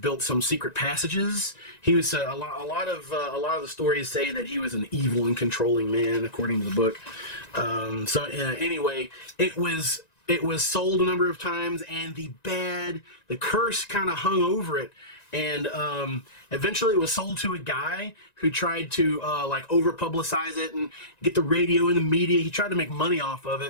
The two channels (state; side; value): late; right; 1.9 ms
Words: some secret passages. He was a lot of the stories say that he was an evil and controlling man, according to the book. Anyway, it was sold a number of times, and the curse kind of hung over it. And eventually it was sold to a guy who tried to like over-publicize it and get the radio and the media. He tried to make money off of